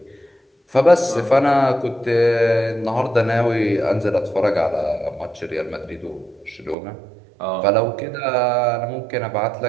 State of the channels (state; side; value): drops out; left; at 6.8 s